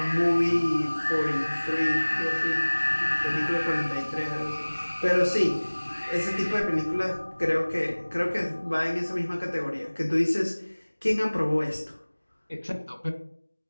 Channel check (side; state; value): both; inverted; correlation -1.00